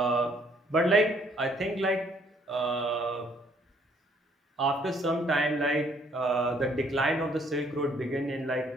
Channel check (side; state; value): both; normal; correlation 0.65